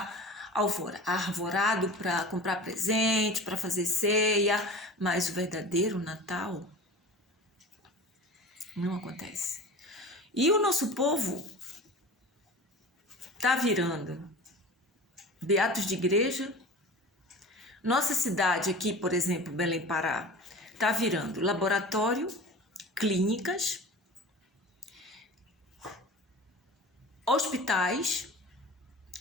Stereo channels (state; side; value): normal; both; correlation 0.36